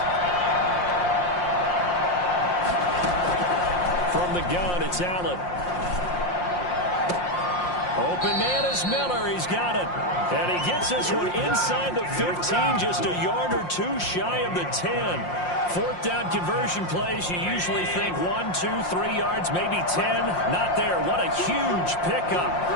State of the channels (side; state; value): right; late; 5.6 ms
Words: From the gun, it's Allen. Open man is Miller. He's got it. And he gets this one inside the 15, just a yard or 2 shy of the 10. 4th down conversion plays, you usually think 1, 2, 3 yards, maybe 10. Not there. What a huge pickup